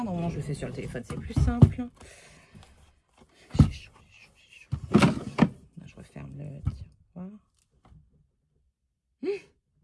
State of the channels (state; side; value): identical; both; correlation 1.00